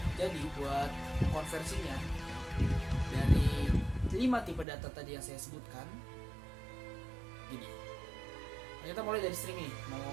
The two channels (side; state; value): left; drops out; at 4.7 s